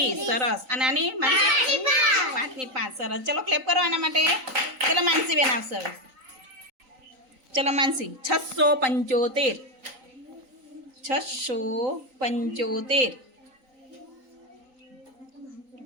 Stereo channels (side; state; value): left; late; 3.9 ms